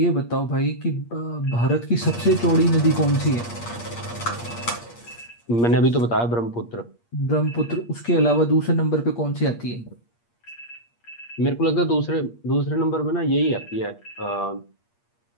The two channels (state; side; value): late; right; 8.5 ms